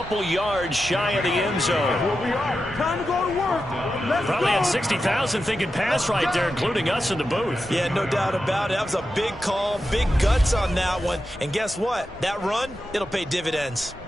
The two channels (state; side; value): normal; both; correlation 0.90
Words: yards shy of the end zone. Time to go to work. Let's Probably go. had 60,000 thinking pass right there, including us in the booth. Yeah, no doubt about it. That was a big call, big guts on that one. And guess what? That run, it'll pay dividends.